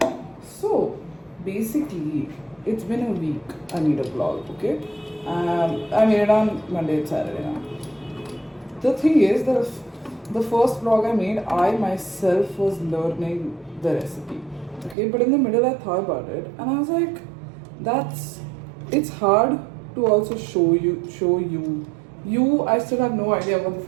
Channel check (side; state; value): left; drops out; at 15.0 s